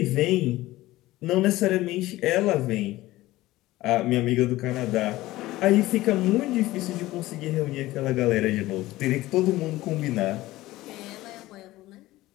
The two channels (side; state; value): right; quieter; 17.3 dB